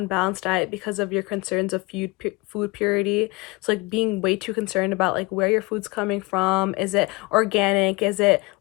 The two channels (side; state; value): right; quieter; 25.1 dB